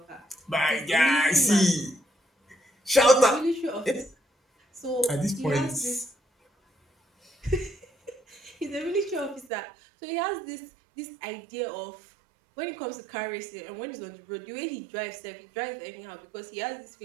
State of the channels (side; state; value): left; drops out; at 9.5 s